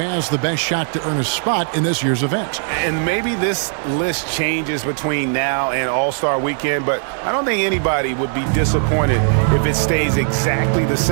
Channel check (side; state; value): left; silent; 67 dB below the other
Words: the best shot to earn a spot in this year's event. And maybe this list changes between now and All-Star Weekend, but I don't think anybody would be disappointed if it stays exactly the